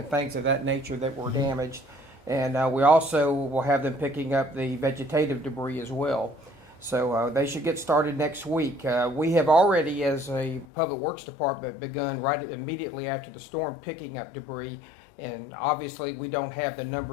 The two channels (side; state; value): right; drops out; at 10.7 s